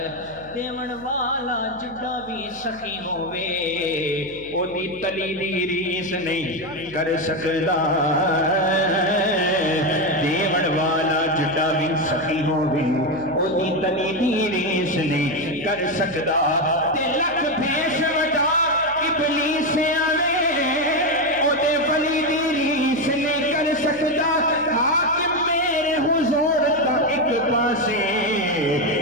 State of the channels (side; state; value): left; noise; hum, 23 dB below the sound